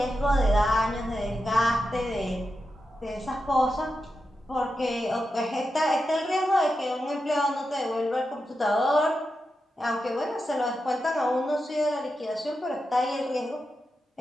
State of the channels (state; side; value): normal; both; correlation 0.89